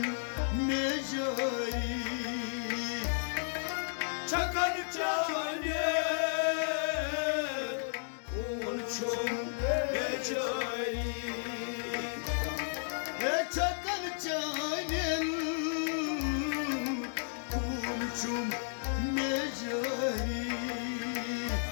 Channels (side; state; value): right; silent; digital silence